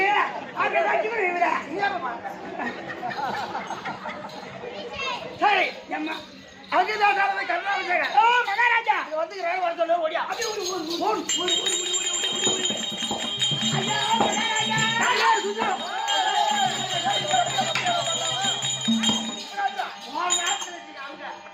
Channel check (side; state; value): both; identical; correlation 1.00